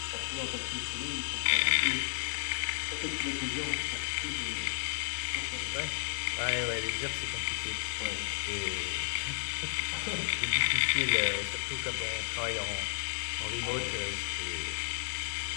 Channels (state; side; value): silent; right; 56 dB below the other